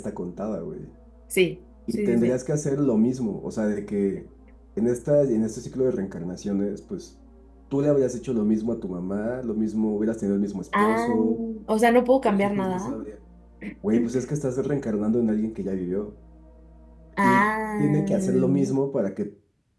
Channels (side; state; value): both; identical; correlation 1.00